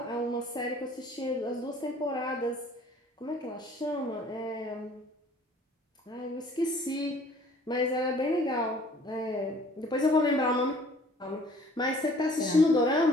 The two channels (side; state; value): both; normal; correlation 0.54